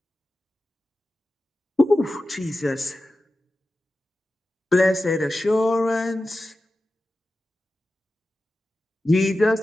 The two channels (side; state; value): both; normal; correlation 0.93